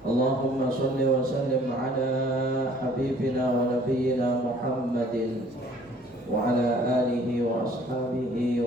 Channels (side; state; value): both; normal; correlation 0.55